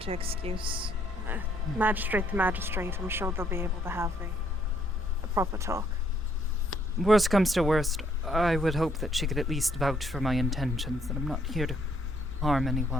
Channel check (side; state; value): both; normal; correlation 0.69